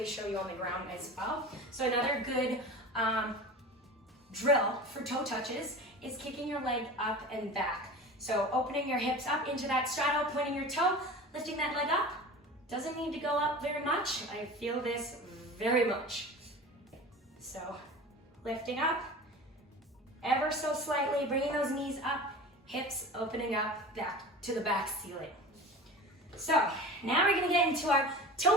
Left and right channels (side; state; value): both; normal; correlation 0.35